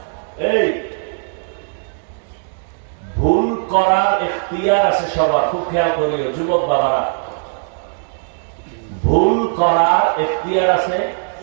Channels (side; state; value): left; silent; digital silence